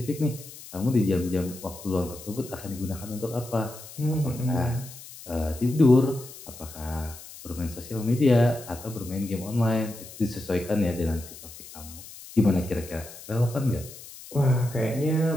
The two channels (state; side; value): noise; left; hiss, 16 dB below the sound